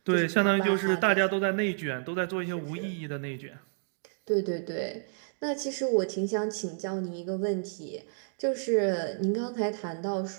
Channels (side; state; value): left; silent; digital silence